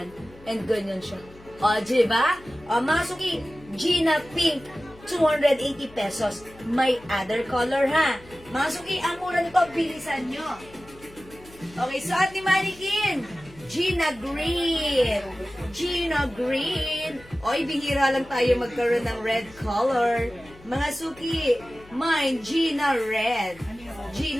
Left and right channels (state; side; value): noise; left; hum, 22 dB below the sound